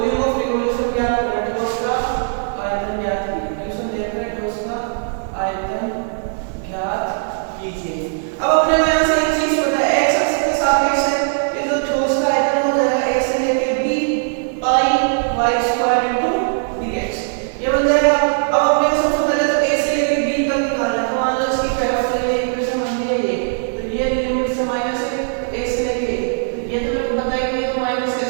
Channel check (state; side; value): silent; left; 66 dB below the other